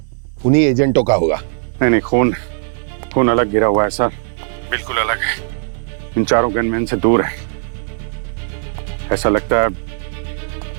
उन्हीं एजेंटों का होगा। नहीं, खून अलग गिरा हुआ है सर, बिल्कुल अलग है। इन 4 गनमैन से दूर है। ऐसा लगता है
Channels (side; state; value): left; silent; digital silence